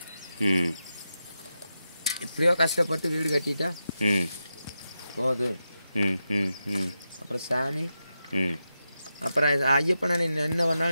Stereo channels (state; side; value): inverted; both; correlation -0.89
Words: எப்படியோ கஷ்டப்பட்டு வீடு கட்டிட்டா போகுது. அப்புறம் சாமி, அப்புறம் ஐயப்பனை என்ன